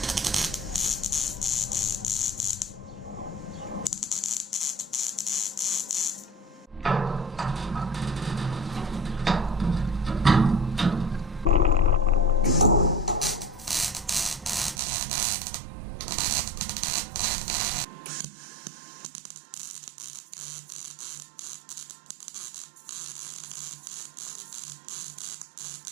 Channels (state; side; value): drops out; left; at 14.8 s